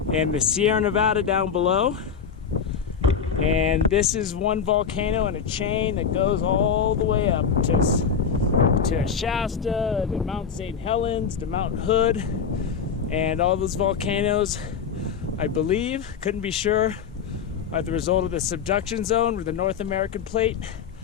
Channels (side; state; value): right; quieter; 6.8 dB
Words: and the Sierra Nevada down below. And this is one volcano in a chain that goes all the way up to to Shasta, to Mount St. Helens, to Mount Hood, and all those volcanoes, I believe, couldn't be sure, are the result of the subduction zone where the North American plate